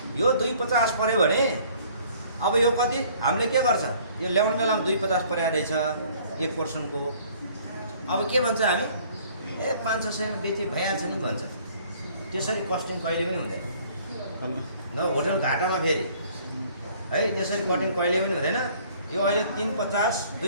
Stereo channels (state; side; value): inverted; both; correlation -0.56